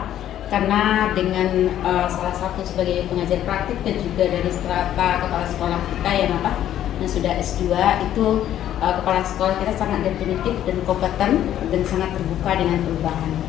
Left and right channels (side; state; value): right; quieter; 11.5 dB